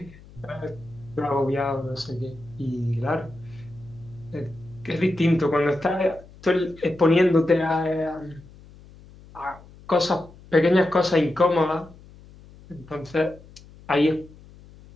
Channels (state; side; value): noise; left; hum, 22 dB below the sound